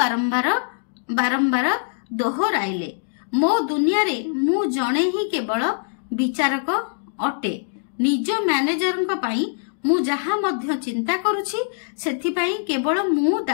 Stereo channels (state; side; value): silent; right; digital silence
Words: ବାରମ୍ବାର ଦୋହରାଇଲେ। ମୋ ଦୁନିଆରେ ମୁଁ ଜଣେ ହିଁ କେବଳ ବିଚାରକ ଅଟେ। ନିଜ ମ୍ୟାନେଜରଙ୍କ ପାଇଁ ମୁଁ ଯାହା ମଧ୍ୟ ଚିନ୍ତା କରୁଛି ସେଥିପାଇଁ କେବଳ ମୁଁ